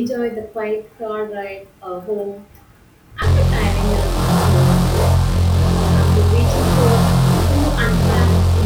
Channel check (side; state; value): both; identical; correlation 1.00